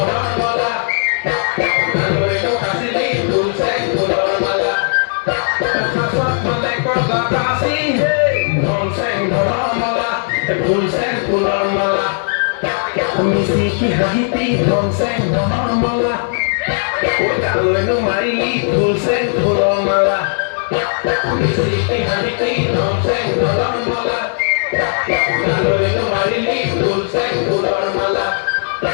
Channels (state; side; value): silent; right; digital silence